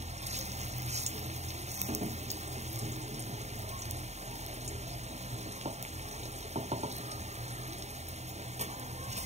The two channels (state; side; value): late; left; 0.32 ms